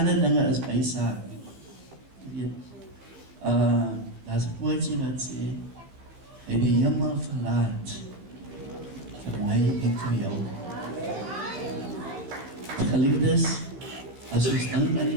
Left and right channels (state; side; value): late; left; 15 ms